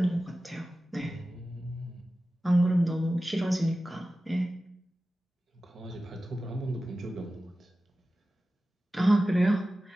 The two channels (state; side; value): normal; both; correlation 0.95